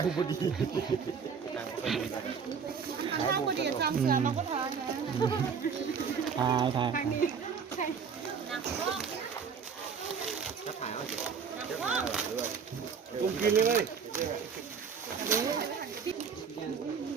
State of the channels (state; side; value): quieter; left; 6.3 dB